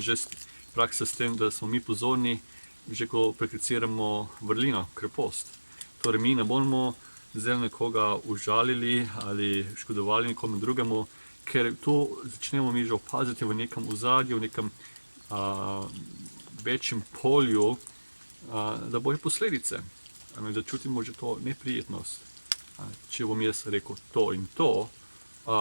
praksa s tem, da smo mi pozorni, že ko prakticiramo vrlino, krepost. Torej, mi ne bomo zdaj nekoga užalili ali škodovali nekomu drugemu, ker to začnemo mi že opaziti v nekem ozadju, v nekem večjem polju, da bojo posledice, da čutimo že to neprijetnost. Če bom jaz rekel to in to,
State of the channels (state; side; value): inverted; both; correlation -1.00